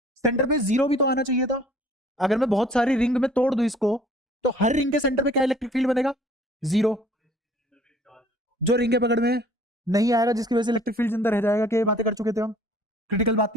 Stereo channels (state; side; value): normal; both; correlation 0.54